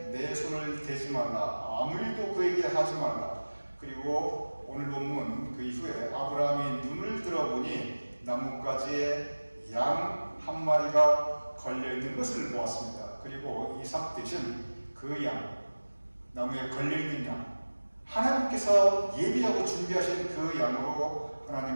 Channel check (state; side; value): inverted; both; correlation -1.00